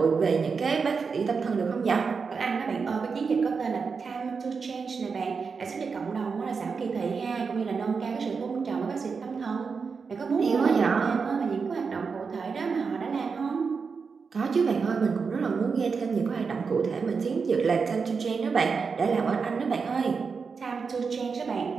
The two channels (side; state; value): left; quieter; 5.3 dB